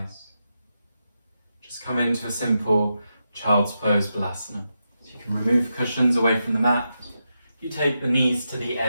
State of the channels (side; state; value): both; inverted; correlation -0.87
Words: just come into a simple child's pose balasana. So you can remove cushions away from the mat. You take the knees to the